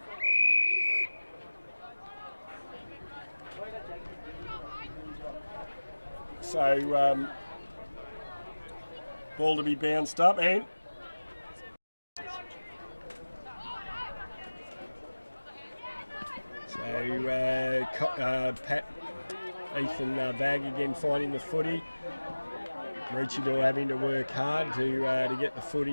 So ball to be bounced up and Pat Ethan Vagg again finding the footy. Maroochydore having to work hard to get the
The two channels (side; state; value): both; inverted; correlation -1.00